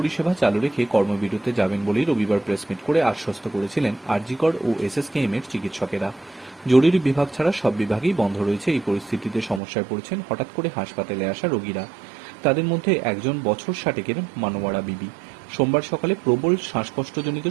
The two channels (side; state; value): left; drops out; at 9.6 s